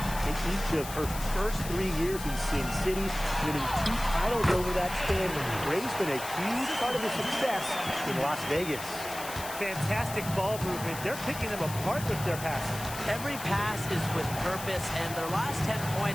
in each of her first 3 years in Sin City, winning 2 titles over that span. Gray's been a huge part of the success in Las Vegas. Fantastic ball movement. They're picking them apart with their passing. Every pass is with purpose, and their last 10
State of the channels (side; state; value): left; noise; hiss, 10 dB below the sound